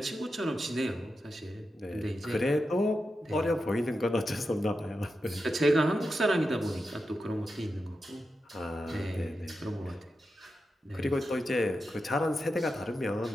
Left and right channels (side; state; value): both; normal; correlation 0.89